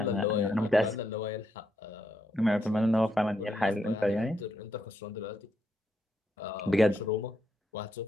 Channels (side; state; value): both; normal; correlation 0.79